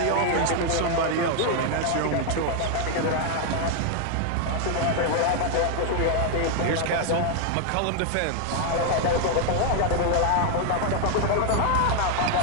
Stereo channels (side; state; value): both; different; correlation 0.00